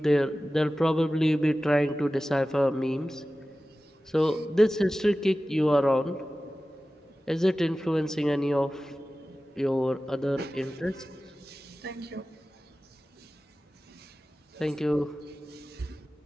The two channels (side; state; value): both; normal; correlation 0.96